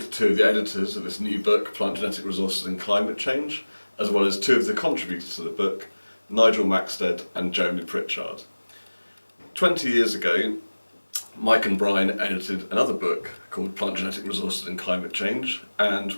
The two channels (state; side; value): inverted; both; correlation -1.00